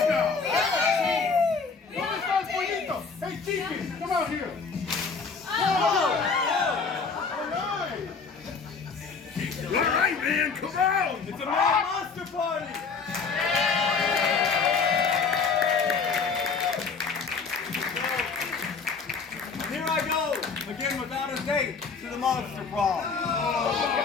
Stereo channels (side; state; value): right; quieter; 5.1 dB